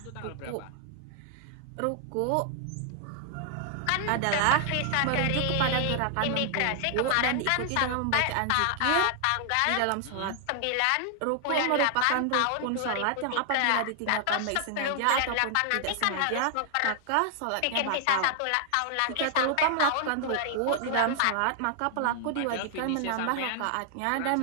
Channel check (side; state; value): both; different; correlation 0.00